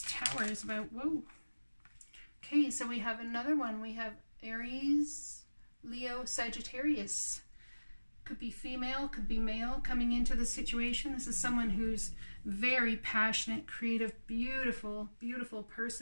Tower is about. Whoa. Okay, so we have another one. We have Aries, Leo, Sagittarius. Could be female, could be male coming into the situation. This is someone who's very passionate, creative, beautiful, beautiful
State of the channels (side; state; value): both; inverted; correlation -1.00